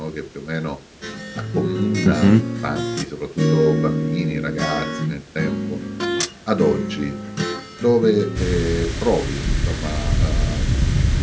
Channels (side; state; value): both; identical; correlation 1.00